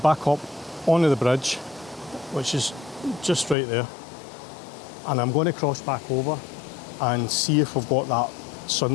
up onto the bridge, which is just right there, and I'm going to cross back over and see if we've got that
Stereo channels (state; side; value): drops out; right; at 3.6 s